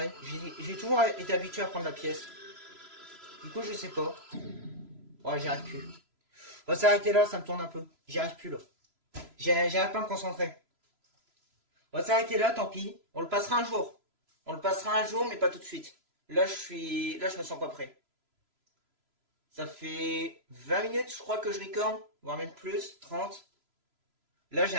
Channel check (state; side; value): late; left; 3.0 ms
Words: J'ai toujours été habitué à prendre la pièce. Du coup, je sais pas. Ouais, j'y arrive plus. On va s'arrêter là, ça me tourne un peu. J'y arrive plus, là. J'arrive pas à me concentrer. On va s'arrêter là, tant pis. On le passera un jour. On le passera un jour, mais pas tout de suite. Là, je me sens pas prêt. Ça fait 20 minutes, je crois, que je recorde. Voire même plus, 30. Là, j'y